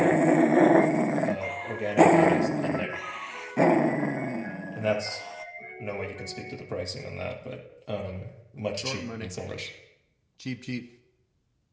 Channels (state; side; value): identical; both; correlation 1.00